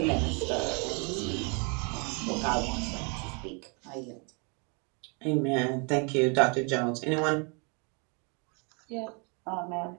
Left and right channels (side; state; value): left; quieter; 34.2 dB